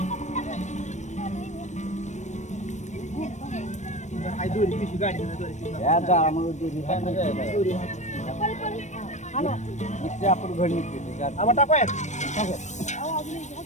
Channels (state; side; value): late; right; 0.34 ms